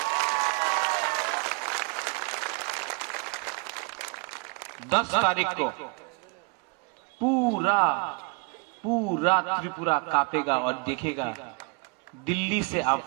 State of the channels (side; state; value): left; quieter; 30.7 dB